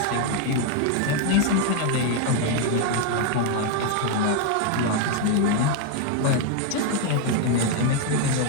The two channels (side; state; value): both; different; correlation 0.01